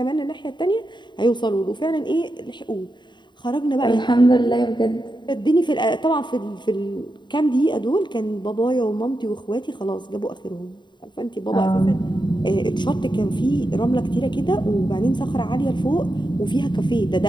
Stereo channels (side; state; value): right; late; 0.22 ms